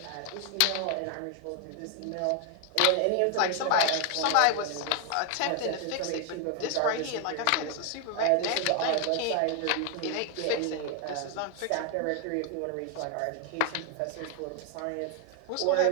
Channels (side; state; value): both; different; correlation 0.00